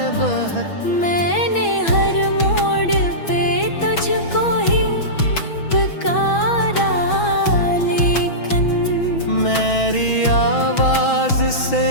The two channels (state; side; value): late; right; 6.1 ms